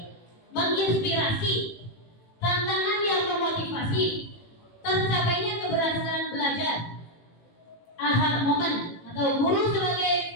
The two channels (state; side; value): late; right; 18 ms